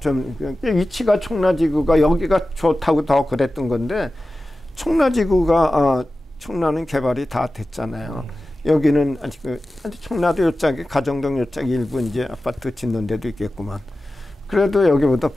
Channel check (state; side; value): normal; both; correlation 0.95